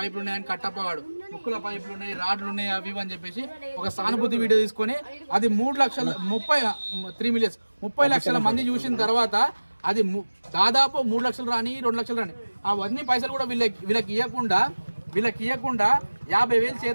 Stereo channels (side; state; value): both; inverted; correlation -1.00